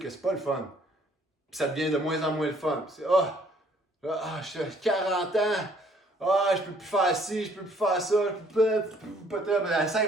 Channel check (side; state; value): both; normal; correlation 0.61